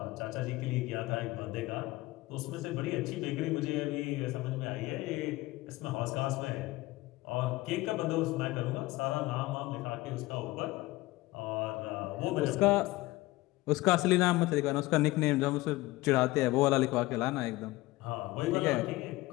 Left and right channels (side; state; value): right; quieter; 19.4 dB